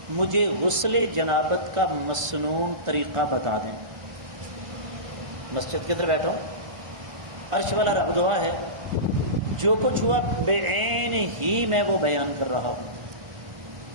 مجھے غسل جنابت کا مسنون طریقہ بتا دیں۔ مسجد کے اندر بیٹھا عرش والا رب گواہ ہے، جو کچھ ہوا بے عین ہی میں وہ بیان کر رہا ہوں۔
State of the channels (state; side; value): late; left; 1.4 ms